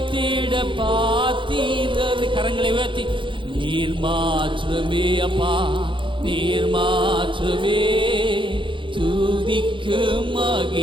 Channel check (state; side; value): late; left; 0.24 ms